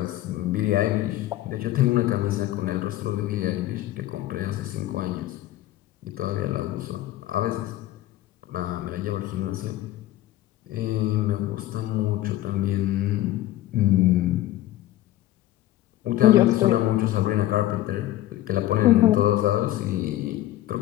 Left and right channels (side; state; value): right; quieter; 14.8 dB